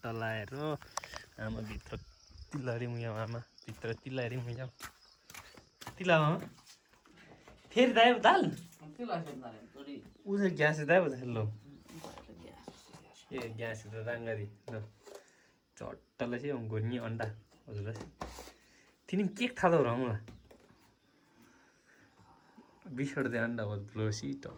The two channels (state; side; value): identical; both; correlation 1.00